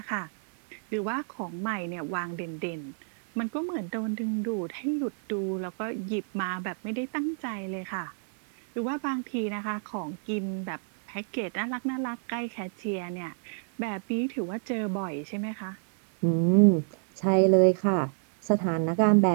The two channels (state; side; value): silent; left; digital silence